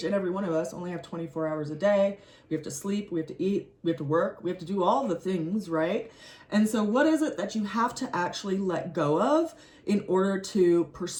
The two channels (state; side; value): identical; both; correlation 1.00